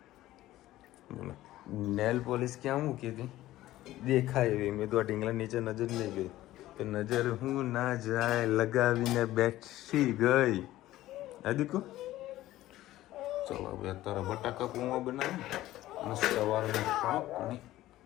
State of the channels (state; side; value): quieter; right; 15.3 dB